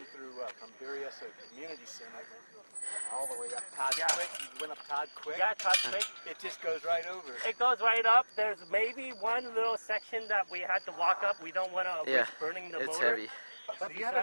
through from V3S Community Center all the way up Todd Quick. You went up Todd Quick? Yeah, Todd Quick. It just goes right over. It goes right up. There's maybe one little section that we had to walk up. We don't want to risk burning the motor. It's heavy. But you have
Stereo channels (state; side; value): inverted; both; correlation -1.00